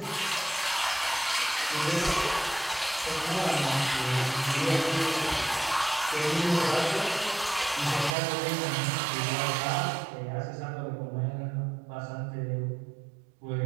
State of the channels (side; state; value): left; drops out; at 8.2 s